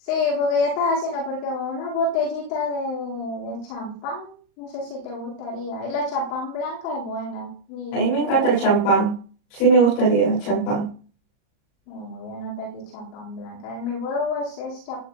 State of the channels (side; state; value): right; late; 38 ms